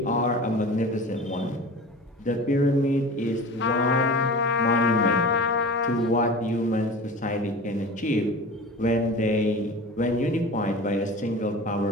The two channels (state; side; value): normal; both; correlation 0.35